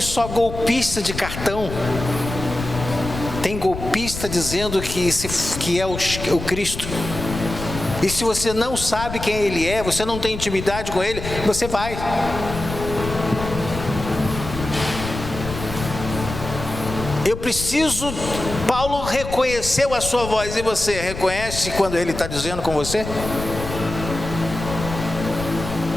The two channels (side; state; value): left; noise; rumble, 8 dB below the sound